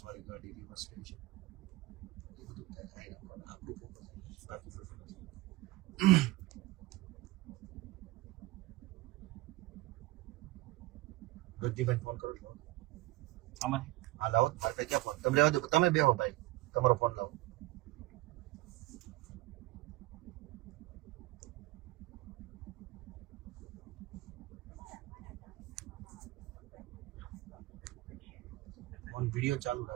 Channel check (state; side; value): quieter; left; 19.4 dB